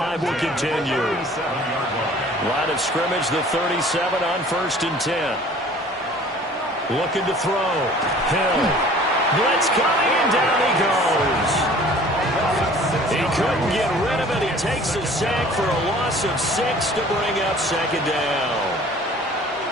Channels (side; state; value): both; normal; correlation 0.49